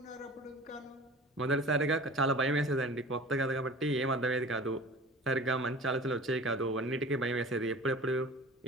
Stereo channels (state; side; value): normal; both; correlation 0.41